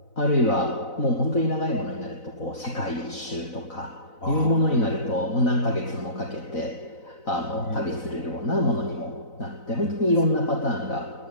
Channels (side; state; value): right; late; 4.0 ms